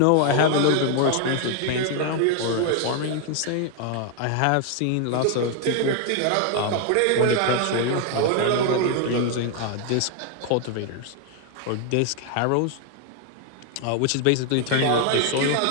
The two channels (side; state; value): both; different; correlation 0.00